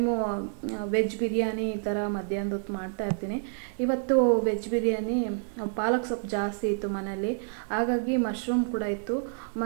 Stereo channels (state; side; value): silent; left; digital silence